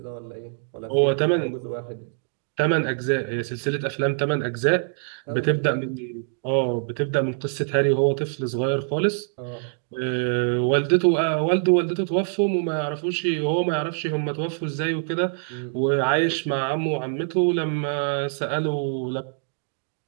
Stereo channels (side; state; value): left; silent; digital silence